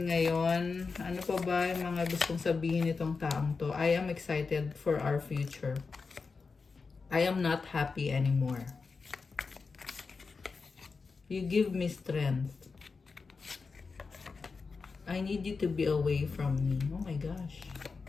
ngayon. Ano pa ba yung mga gustong sabihin nitong taong to? I am excited for our future. I am not happy anymore. You give me strength. I need you to be away from me. Oh my gosh.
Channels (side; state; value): right; quieter; 4.6 dB